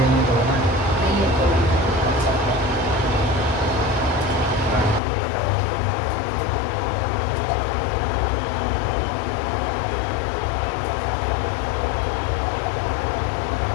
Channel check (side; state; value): right; drops out; at 5.0 s